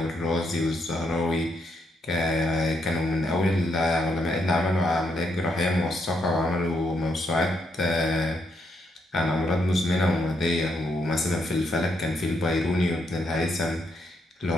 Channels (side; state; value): both; normal; correlation 0.78